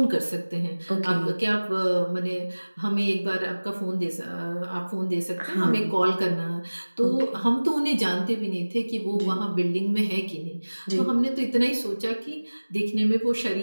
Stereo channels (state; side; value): inverted; both; correlation -1.00